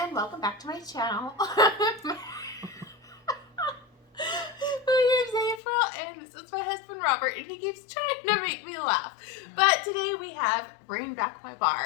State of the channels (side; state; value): right; drops out; at 5.6 s